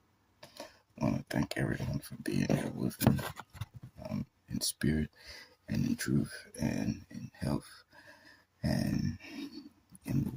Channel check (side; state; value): both; identical; correlation 1.00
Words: I want to thank everyone for being here with me, in spirit and in truth and in health and in the